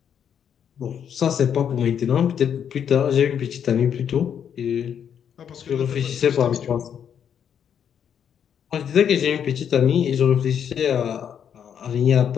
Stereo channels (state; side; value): quieter; right; 8.4 dB